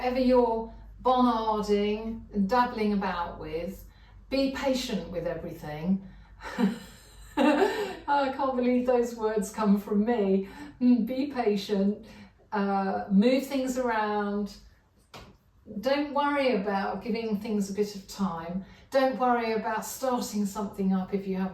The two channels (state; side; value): identical; both; correlation 1.00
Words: you're Bonnarding and dabbling about with, be patient with everything. I can't believe those words come from me. Be patient, move things around. Don't worry about giving things a bit of time. Don't worry about starting something up if you